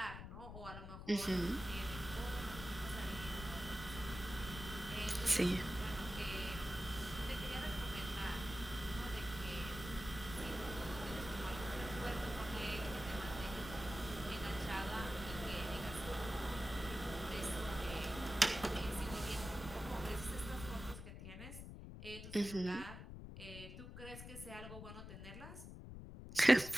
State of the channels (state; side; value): noise; left; rumble, 10 dB below the sound